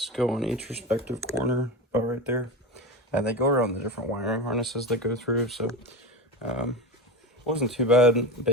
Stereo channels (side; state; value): both; normal; correlation 0.24